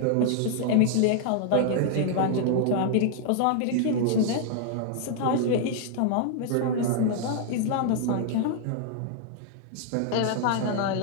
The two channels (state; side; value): different; both; correlation 0.00